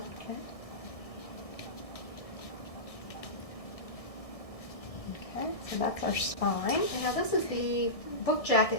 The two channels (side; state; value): right; late; 1.6 ms